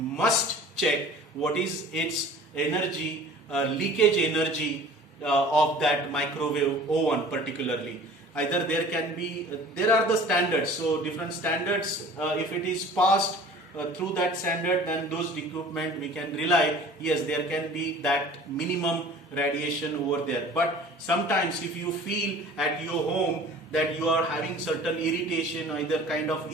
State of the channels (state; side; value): normal; both; correlation 0.45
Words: check what is its energy, leakage energy of that microwave oven particularly. Either there are the standards, so different standards, if it is passed through that standard, then those equipment we can rely, yes, there can be that minimum radiation over there. But sometimes if you feel at your home that you are having certain irritation, either kind of